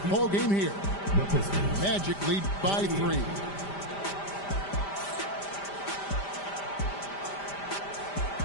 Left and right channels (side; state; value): right; late; 5.1 ms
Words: ball game here. Magic lead by 3.